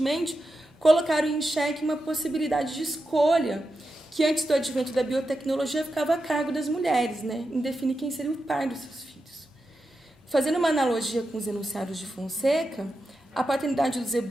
colocaram em xeque uma possibilidade de escolha que, antes do advento da biotecnologia, ficava a cargo das mulheres, né, em definir quem seria o pai dos seus filhos. Fazendo uma analogia com os enunciados de Fonseca, a paternidade dos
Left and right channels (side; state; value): both; normal; correlation 0.89